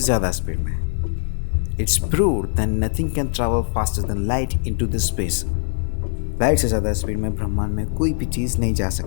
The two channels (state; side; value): silent; right; 64 dB below the other